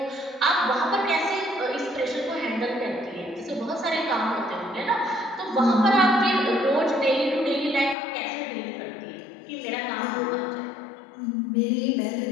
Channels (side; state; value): right; drops out; at 8.0 s